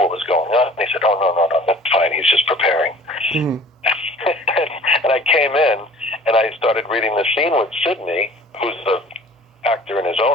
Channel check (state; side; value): normal; both; correlation 0.47